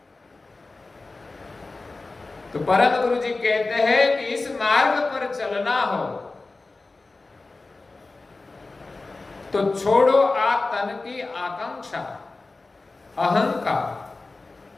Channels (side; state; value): right; quieter; 3.5 dB